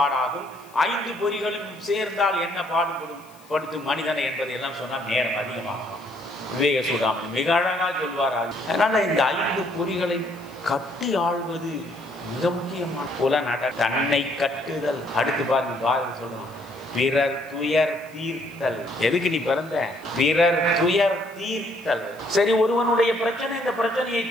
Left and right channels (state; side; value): noise; left; hiss, 26 dB below the sound